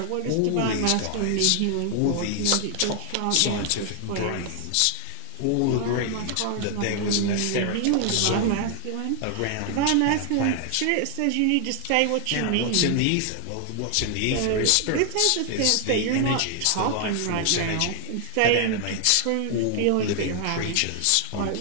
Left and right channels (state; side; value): different; both; correlation 0.00